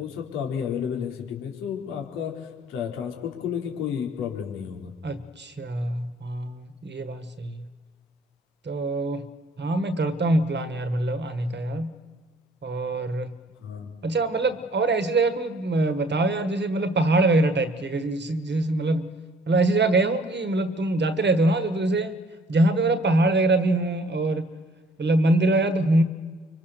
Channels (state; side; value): normal; both; correlation 0.58